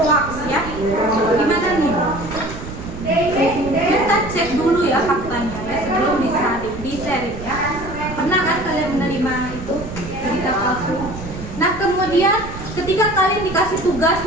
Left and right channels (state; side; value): noise; right; rumble, 11 dB below the sound